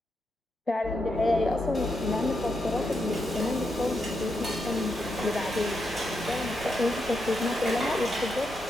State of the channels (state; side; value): normal; both; correlation 0.83